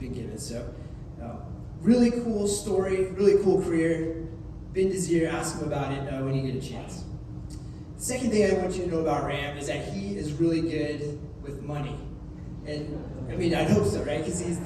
been given. So Really cool story, really cool career. Bend his ear, ask him about it when you get a chance. The second thing I want you to know about Ram is that he is really good with money. And I mean, I'd hope so, right? Because he's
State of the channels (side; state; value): both; identical; correlation 1.00